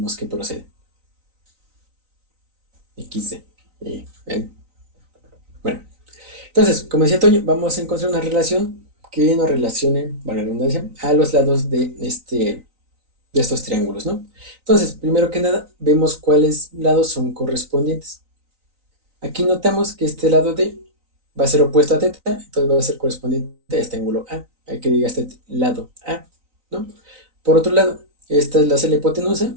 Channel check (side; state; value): left; late; 3.9 ms